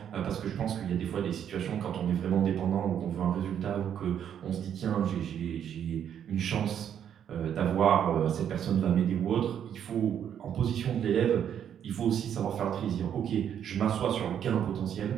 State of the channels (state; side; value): quieter; left; 9.2 dB